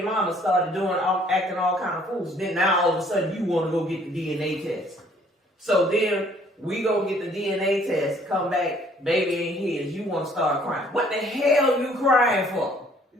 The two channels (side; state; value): both; normal; correlation 0.60